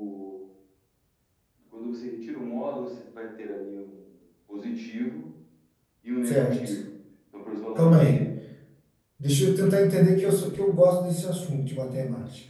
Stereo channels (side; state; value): both; identical; correlation 1.00